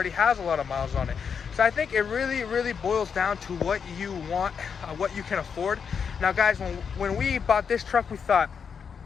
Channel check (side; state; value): right; quieter; 6.6 dB